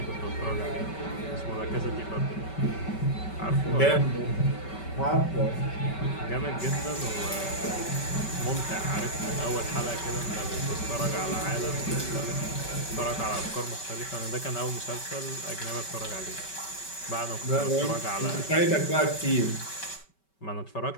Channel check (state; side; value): late; right; 5.2 ms